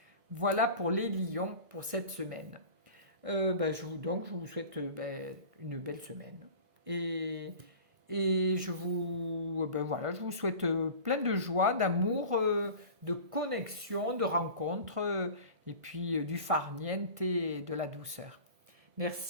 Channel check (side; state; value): left; late; 1.6 ms